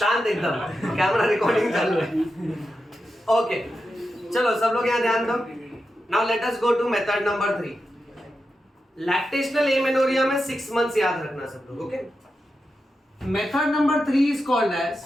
एकदम, कैमरा रिकॉर्डिंग चल रहा है। ओके चलो सब लोग यहाँ ध्यान दो। Now let us go to method number 3। Lactational amenorrhea में 6 मंथ्स याद रखना सब लोग। Okay, method number 3 is called as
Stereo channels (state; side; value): normal; both; correlation 0.89